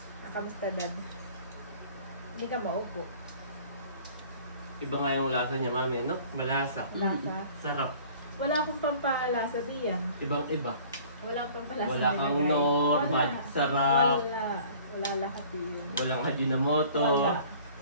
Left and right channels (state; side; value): inverted; both; correlation -0.50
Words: Kamusta, Dad? Hindi ka maupo. Iba nga yung lasa niya, mami, no? Malasa. Lasa. Sarap. Wala akong pampalasa diyan. Ibang-iba. Wala akong pampalasa. Wala kang nilagay. normal. Sarap. Wala lahat yun. Walang Ajinomoto. Wala.